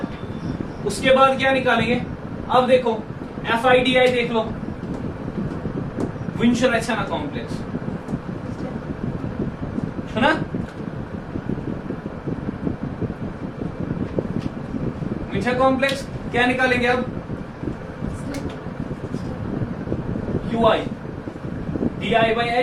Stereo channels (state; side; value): identical; both; correlation 1.00